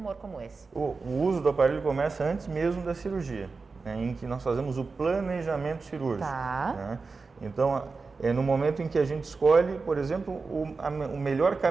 como esse. O uso do aparelho começa antes mesmo da cirurgia, né, em que nós fazemos o planejamento cirúrgico. Né? Então, no momento em que a gente escolhe, por exemplo, o melhor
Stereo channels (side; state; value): left; quieter; 4.3 dB